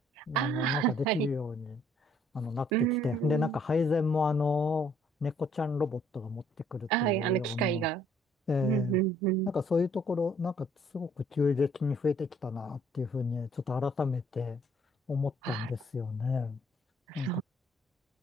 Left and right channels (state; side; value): normal; both; correlation 0.63